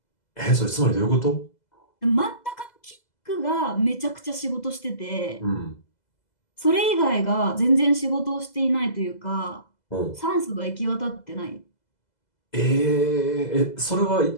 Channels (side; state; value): right; late; 2.0 ms